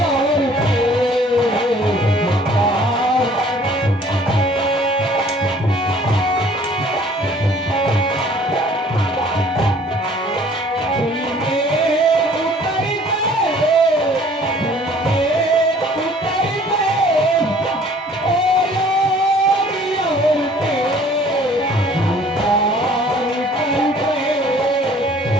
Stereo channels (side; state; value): both; normal; correlation 0.54